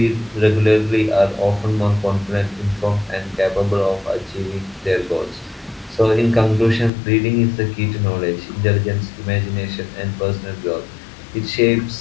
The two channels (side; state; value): right; drops out; at 6.9 s